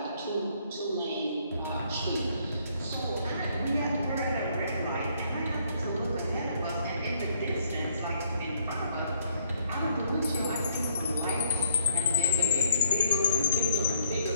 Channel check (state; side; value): inverted; both; correlation -0.66